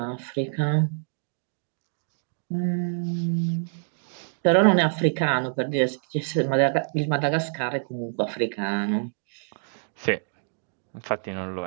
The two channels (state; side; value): silent; left; digital silence